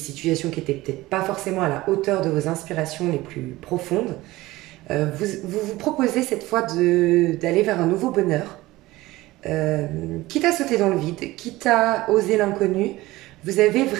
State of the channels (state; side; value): quieter; left; 18.5 dB